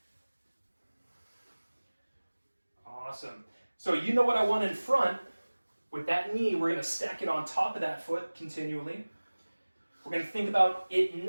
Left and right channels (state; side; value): inverted; both; correlation -1.00